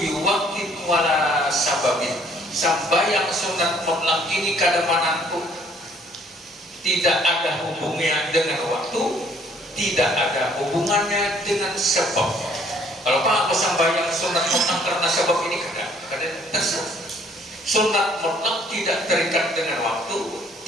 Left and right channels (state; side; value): normal; both; correlation 0.61